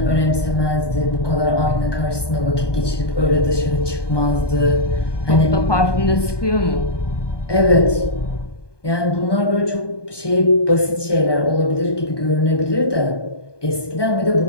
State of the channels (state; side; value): late; right; 1.2 ms